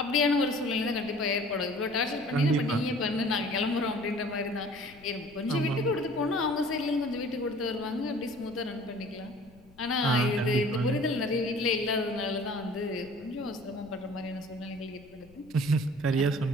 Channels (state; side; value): noise; left; rumble, 25 dB below the sound